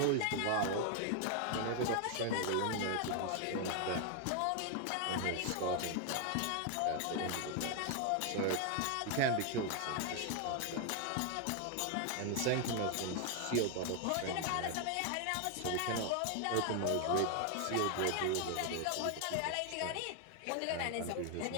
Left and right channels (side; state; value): both; different; correlation 0.00